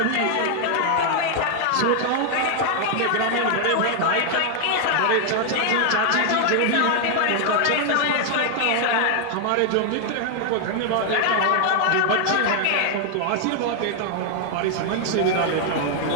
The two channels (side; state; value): both; different; correlation 0.00